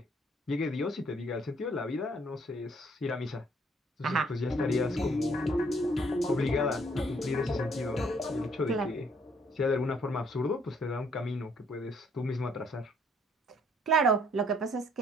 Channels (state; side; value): normal; both; correlation 0.65